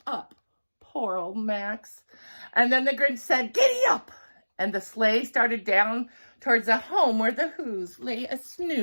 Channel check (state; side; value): inverted; both; correlation -1.00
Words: up. Poor old Max. And then the Grinch said, giddy up! And the sleigh started down towards the home where the Whos lay a